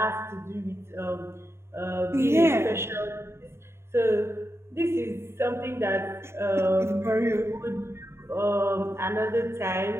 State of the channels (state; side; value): late; left; 0.12 ms